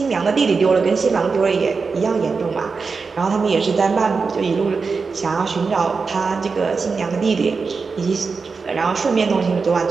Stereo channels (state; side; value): quieter; left; 4.8 dB